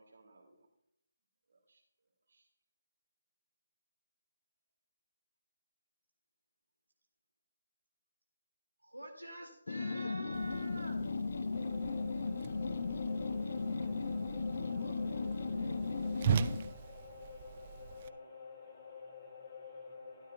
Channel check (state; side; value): inverted; both; correlation -0.80